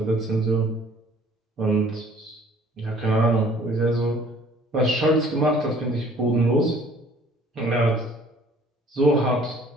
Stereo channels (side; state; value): both; normal; correlation 0.55